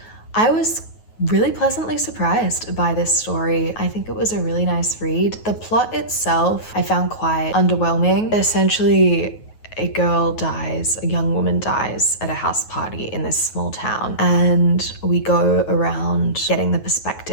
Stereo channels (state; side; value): late; right; 9.3 ms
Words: I was really pleasantly surprised by this story. I think it was a really nice read. The plot itself I found quite underwhelming. Essentially, a young woman dies at a house party in this small town, and we go around getting the